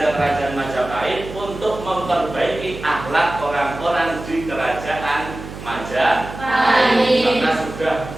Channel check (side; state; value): right; noise; hum, 12 dB below the sound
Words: Majapahit untuk memperbaiki akhlak orang-orang di kerajaan Majapahit karena sudah